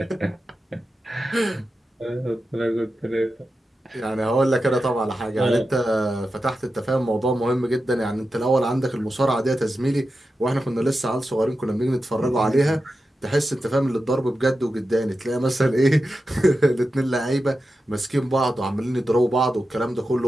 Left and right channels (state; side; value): normal; both; correlation 0.91